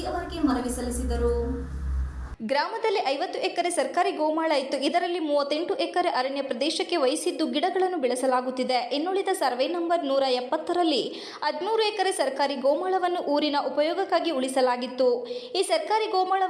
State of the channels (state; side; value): identical; both; correlation 1.00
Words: ಅವರಿಗೆ ಮನವಿ ಸಲ್ಲಿಸಿದರು. ಗ್ರಾಮದಲ್ಲಿ 50 ಎಕರೆ ಸರ್ಕಾರಿ ಗೋಮಾಳ ಇತ್ತು. ಇದರಲ್ಲಿ 38 ಎಕರೆ ಅರಣ್ಯ ಪ್ರದೇಶಕ್ಕೆ ವಹಿಸಿದ್ದು ಗಿಡಗಳನ್ನು ಬೆಳೆಸಲಾಗುತ್ತಿದೆ. ಇನ್ನುಳಿದ ಸರ್ವೆ ನಂಬರ್ 170ರಲ್ಲಿ 13 ಎಕರೆ ಸರ್ಕಾರಿ ಗೋಮಾಳವನ್ನು ಊರಿನ ಉಪಯೋಗಕ್ಕಾಗಿ ಉಳಿಸಲಾಗಿತ್ತು. ಈ ಸರ್ಕಾರಿ